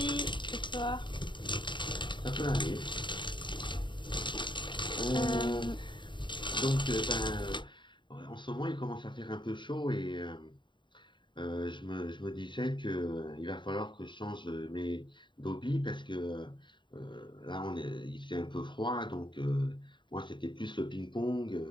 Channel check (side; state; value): right; late; 0.23 ms